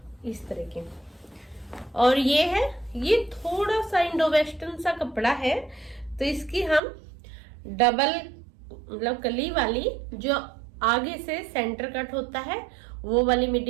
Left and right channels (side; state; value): left; drops out; at 6.8 s